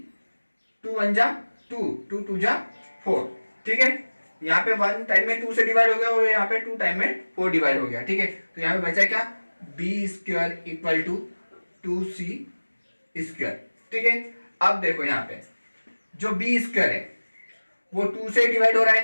2 1 जा 2, 2 2 जा 4, ठीक है। यहाँ पे 1 टाइम में 2 से डिवाइड हो गया और यहाँ पे 2 टाइम में 4 डिवाइड हो गया, ठीक है। तो यहाँ पे बचा क्या, b square equal to 2c square, ठीक है। अब देखो यहाँ पे जो b स्क्वायर है वो 2 से डिवाइड हो रहा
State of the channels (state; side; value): inverted; both; correlation -1.00